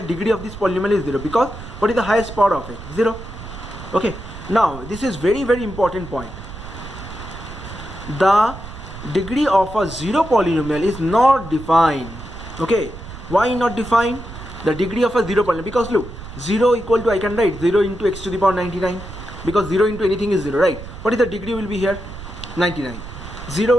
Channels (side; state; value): right; noise; rumble, 13 dB below the sound